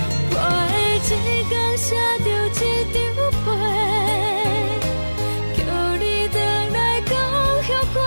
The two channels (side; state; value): both; inverted; correlation -1.00